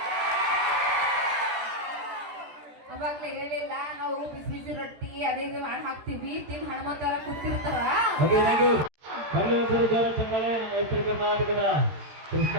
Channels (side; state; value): left; late; 13 ms